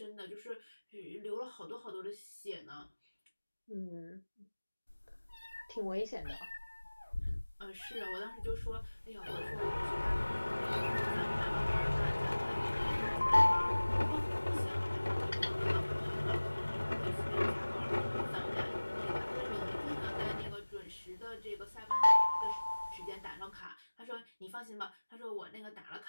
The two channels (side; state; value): both; inverted; correlation -1.00